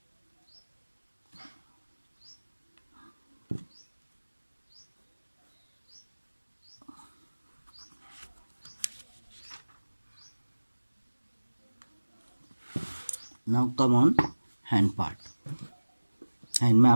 Now come on hand part. Hand में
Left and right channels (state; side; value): inverted; both; correlation -1.00